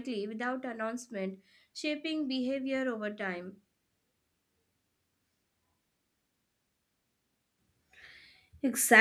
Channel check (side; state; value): both; identical; correlation 1.00